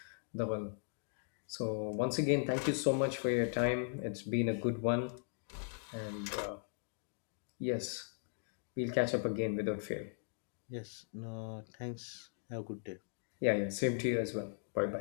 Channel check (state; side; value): silent; right; digital silence